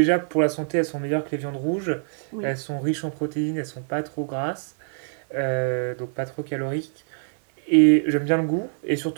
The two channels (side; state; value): left; silent; digital silence